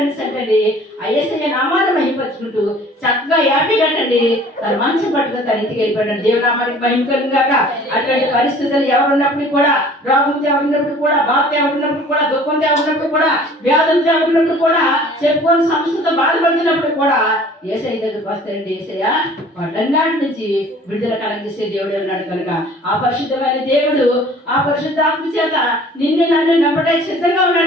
సంటండి. ఆ యేసయ్య నామాన్ని మహిమపరుచుకుంటూ చక్కగా యాపీ కట్టండి తన మంచం పట్టుకుని తన ఇంటికి వెళ్ళిపోయాడు. దేవునామానికి మహిమ కలుగాక. అటువంటి పరిస్థితులు ఎవరున్నప్పుడు కూడా, రోగంతో ఎవరున్నప్పుడు కూడా, బాధతో ఎవరున్నప్పుడు కూడా, దుఃఖంతో ఉన్నప్పుడు కూడా, వ్యాధులతో ఉన్నప్పుడు కూడా, చెప్పుకొని సంస్థతో బాధపడుతున్నప్పుడు కూడా యేసయ్య దగ్గరికి వస్తారండి. యేసయ్య వాటన్నిటి నుంచి విడుదల కలగజేసే దేవుడు ఉన్నాడు కనుక ఆ పరిశుద్ధమైన దేవుడు ఆ పరిశుద్ధ ఆత్మ చేత నిన్ను నన్ను నమ్మడానికి సిద్ధంగా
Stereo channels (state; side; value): normal; both; correlation 0.50